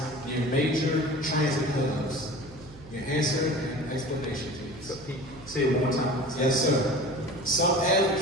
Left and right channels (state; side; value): noise; right; hum, 19 dB below the sound